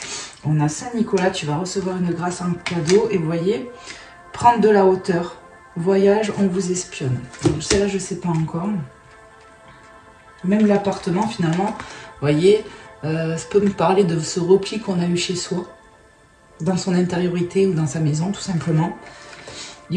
On a Saint-Nicolas, tu vas recevoir une grâce en cadeau. Et vous voyez, prendre de la hauteur. Voyage, on vous espionne. Celle-là, je ne sais pas encore. Même l'appartement, finalement, vous voyez, ça peut me parler de ce repli qu'on a eu chez soi, dans son intériorité ou dans sa maison, tout simplement. Il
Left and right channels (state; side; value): identical; both; correlation 1.00